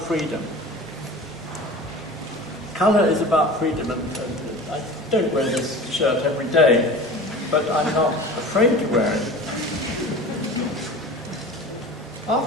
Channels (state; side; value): normal; both; correlation 0.37